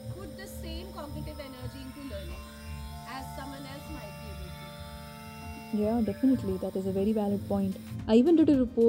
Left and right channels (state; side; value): identical; both; correlation 1.00